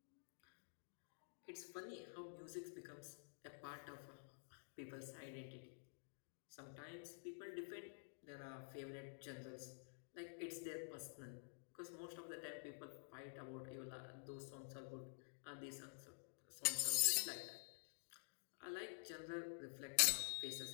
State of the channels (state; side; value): silent; right; digital silence